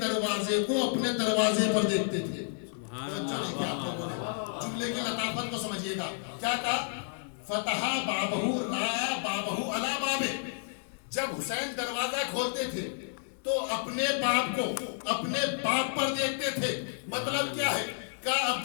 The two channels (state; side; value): silent; right; digital silence